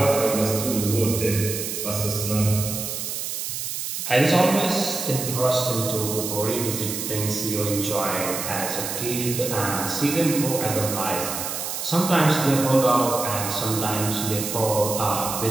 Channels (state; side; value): noise; right; hiss, 4 dB below the sound